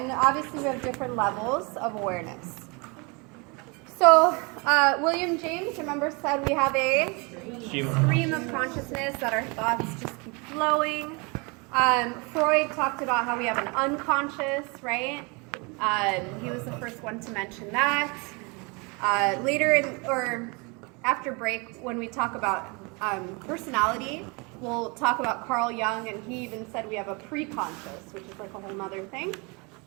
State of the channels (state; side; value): quieter; left; 29.8 dB